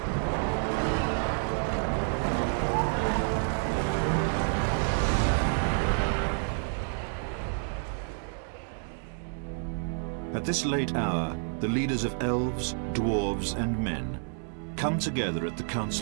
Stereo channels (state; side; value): silent; left; 58 dB below the other